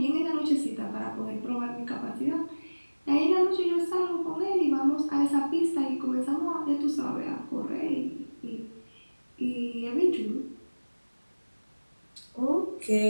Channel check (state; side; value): inverted; both; correlation -1.00